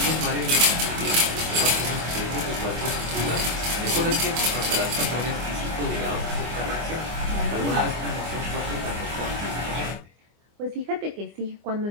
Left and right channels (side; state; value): left; late; 25 ms